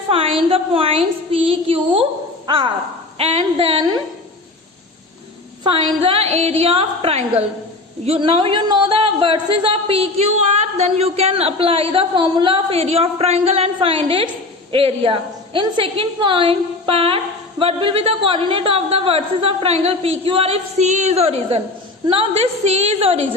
find the points P, Q, R, and then find the area of triangle. Now you know the vertices of PQR, then you can apply the formula of area of triangle and find its area. In second part, what will be the coordinate of the vertices of triangle PQR if C is origin? Now this C is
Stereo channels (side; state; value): right; quieter; 3.1 dB